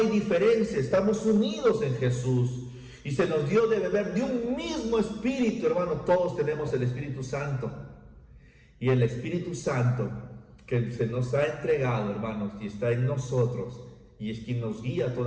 diferencia, estamos unidos en Jesús. Y se nos dio de beber de un mismo espíritu, hermano. Todos tenemos el Espíritu Santo. Y el Espíritu Santo que se nos ha entregado, hermanos, y está en nosotros, y es quien nos guía a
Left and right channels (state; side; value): identical; both; correlation 1.00